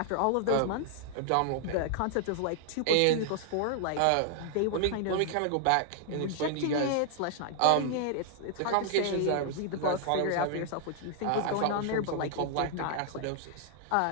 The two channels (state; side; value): different; both; correlation -0.01